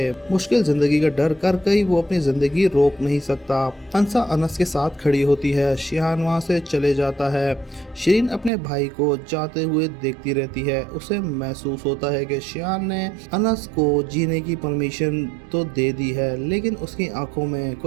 مشکل زندگی کا ڈر کر کے وہ اپنی زندگی روک نہیں سکتا۔ انسا انس کے ساتھ کھڑی ہوتی ہے۔ شیان وہاں سے چلے جاتا ہے۔ شرین اپنے بھائی کو جاتے ہوئے دیکھتی رہتی ہے۔ اسے محسوس ہوتا ہے کہ شیان نے انس کو جینے کی پرمیشن تو دے دی ہے، لیکن اس کی آنکھوں میں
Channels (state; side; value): drops out; left; at 8.5 s